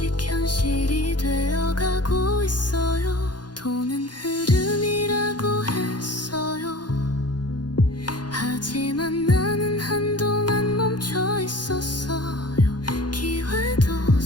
현실이 되어가고 있어요. 돈은 흐름이라고 했어요. 하지만 나는 한동안 멈춰 있었어요. 기회도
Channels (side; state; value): right; late; 0.70 ms